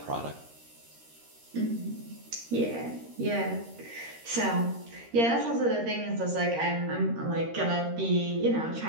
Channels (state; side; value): late; left; 13 ms